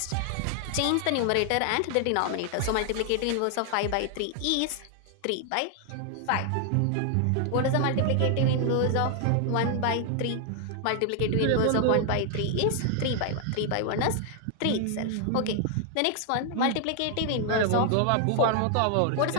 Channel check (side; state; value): both; different; correlation 0.00